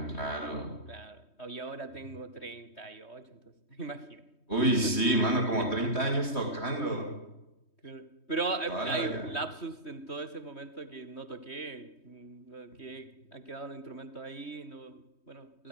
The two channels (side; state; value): right; late; 3.2 ms